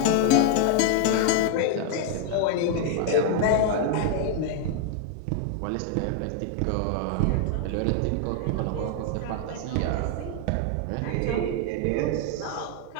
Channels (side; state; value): both; different; correlation 0.00